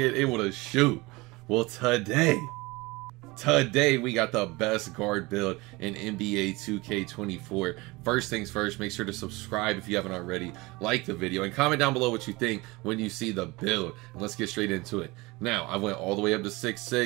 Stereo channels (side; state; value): left; quieter; 23.0 dB